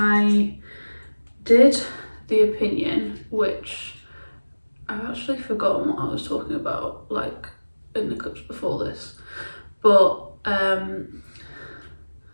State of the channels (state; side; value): inverted; both; correlation -1.00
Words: did the opinion, which I've actually forgotten what I was talking about, like in the clips before this, but